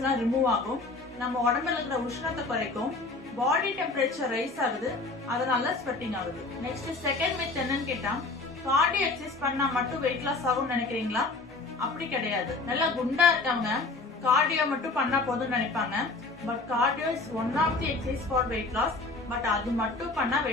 எல்லாம் ரிமூவ் ஆகும், நம்ம உடம்புல இருக்கிற உஷ்ணத்தை குறைக்கும், பாடி டெம்பரேச்சர் ரைஸ் ஆகுது, அதனால ஸ்வெட்டிங் ஆகுது. நெக்ஸ்ட் செகண்ட் மித் என்னன்னு கேட்டா, கார்டியோ எக்ஸசைஸ் பண்ணா மட்டும் வெயிட் லாஸ் ஆகும்னு நினைக்கிறீங்களா? அப்படி கிடையாது. நல்லா குண்டா இருக்கவங்க கார்டியோ மட்டும் பண்ணா போதும்னு நினைப்பாங்க. But cardio is one of the exercise for weight loss. But அது மட்டும் பண்ணா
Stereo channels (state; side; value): quieter; right; 3.5 dB